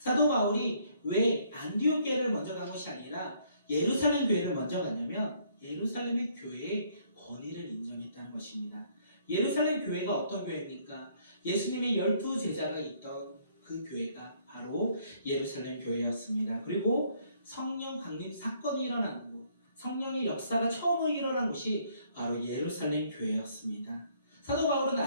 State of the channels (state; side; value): inverted; both; correlation -0.65